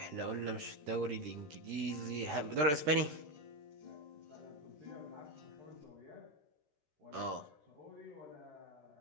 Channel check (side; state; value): left; late; 13 ms